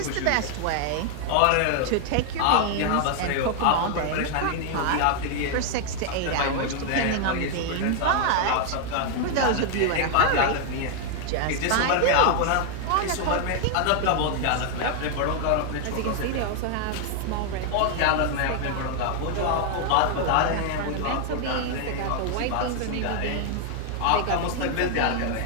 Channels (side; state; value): both; different; correlation 0.00